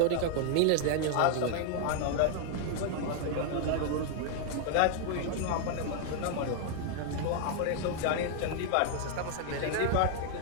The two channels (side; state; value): both; different; correlation 0.00